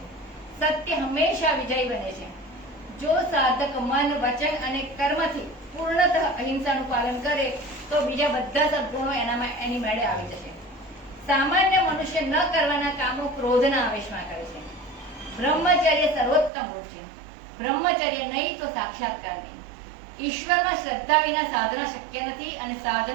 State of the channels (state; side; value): drops out; left; at 16.5 s